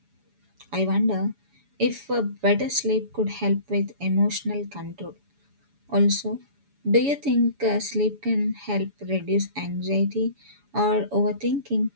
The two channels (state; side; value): late; left; 7.1 ms